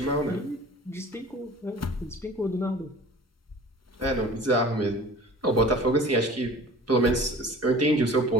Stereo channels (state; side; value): normal; both; correlation 0.43